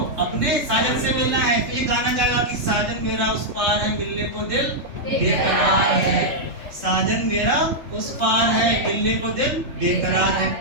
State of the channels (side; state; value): left; late; 3.4 ms